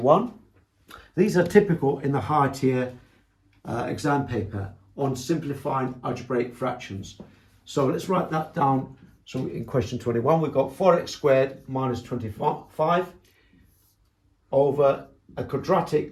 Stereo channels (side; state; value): both; identical; correlation 1.00